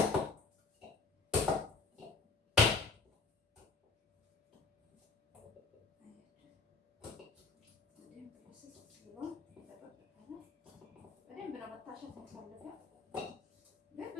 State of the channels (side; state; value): right; quieter; 4.3 dB